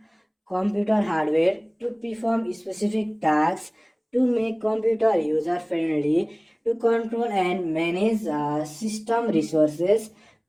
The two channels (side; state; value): both; identical; correlation 1.00